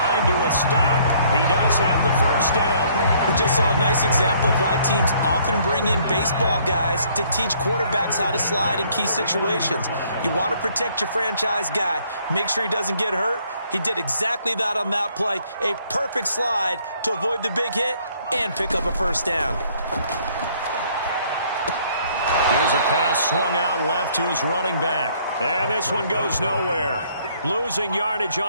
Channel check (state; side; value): inverted; both; correlation -0.63